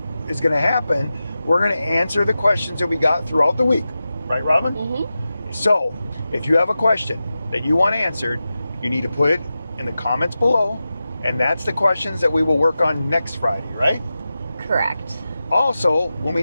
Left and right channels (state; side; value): inverted; both; correlation -0.93